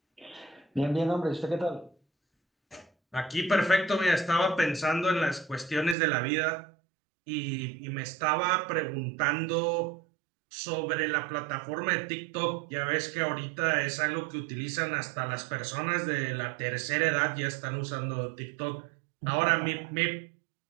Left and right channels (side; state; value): left; drops out; at 6.0 s